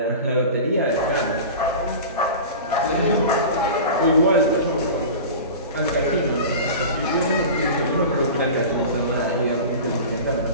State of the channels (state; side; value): inverted; both; correlation -0.33